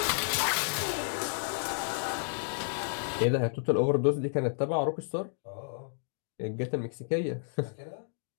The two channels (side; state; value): right; silent; digital silence